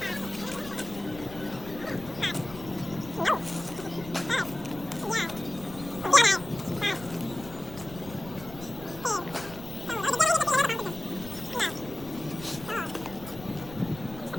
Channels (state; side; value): noise; left; rumble, 15 dB below the sound